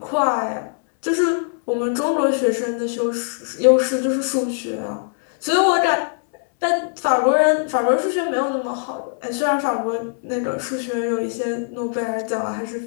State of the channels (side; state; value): right; silent; 65 dB below the other